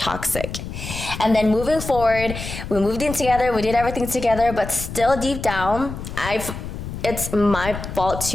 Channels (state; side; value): noise; left; rumble, 8 dB below the sound